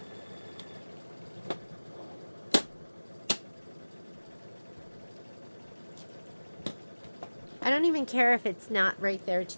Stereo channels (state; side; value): inverted; both; correlation -1.00